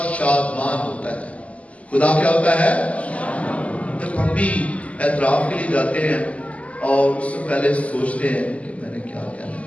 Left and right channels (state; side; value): late; right; 0.068 ms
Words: شادمان ہوتا ہے۔ خدا کیا ہوتا ہے؟ جب ہم بھی اعتراف کے لیے جاتے ہیں اور اس سے پہلے سوچتے ہیں کہ میں نے کیا کہنا